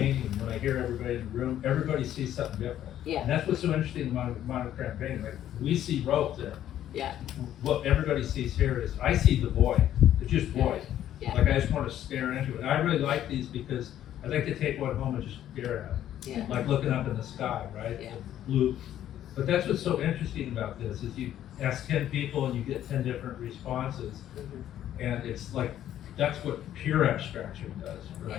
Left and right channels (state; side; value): quieter; right; 11.6 dB